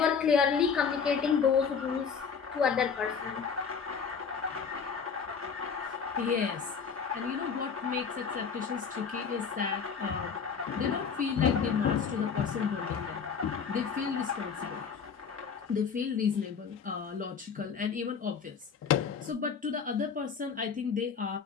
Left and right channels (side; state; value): right; quieter; 6.2 dB